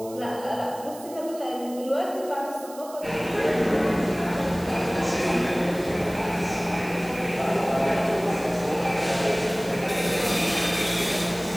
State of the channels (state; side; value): noise; right; hiss, 18 dB below the sound